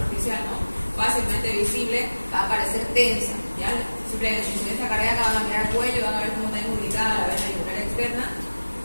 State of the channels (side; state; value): both; inverted; correlation -1.00